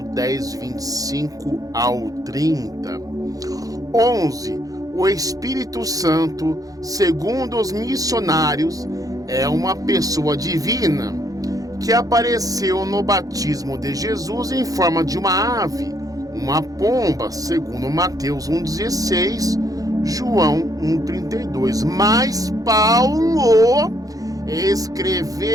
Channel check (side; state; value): left; late; 0.17 ms